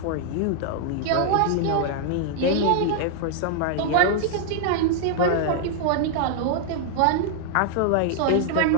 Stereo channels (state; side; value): different; both; correlation -0.01